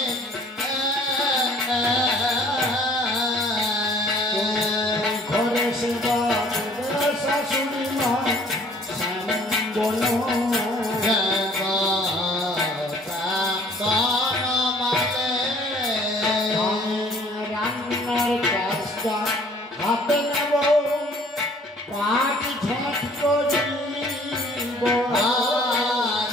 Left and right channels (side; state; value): both; normal; correlation 0.55